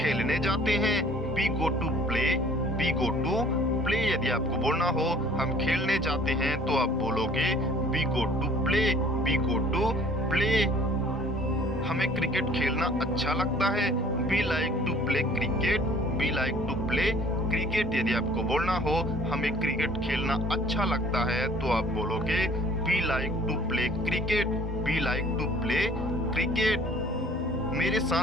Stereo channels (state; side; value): normal; both; correlation 0.53